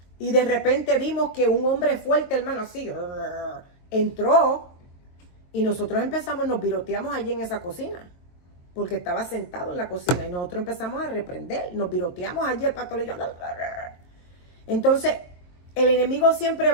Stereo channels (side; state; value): right; late; 23 ms